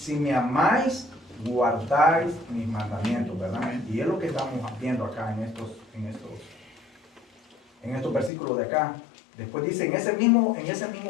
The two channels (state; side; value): drops out; right; at 8.3 s